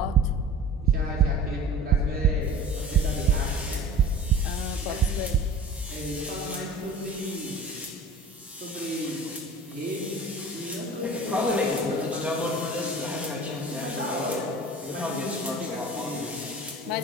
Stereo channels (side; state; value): both; normal; correlation 0.41